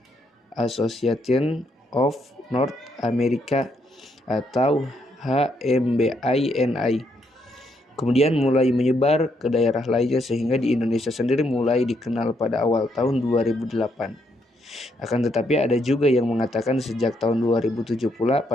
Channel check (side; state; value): both; normal; correlation 0.75